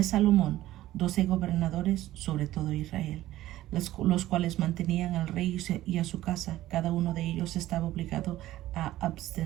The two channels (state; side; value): quieter; left; 15.0 dB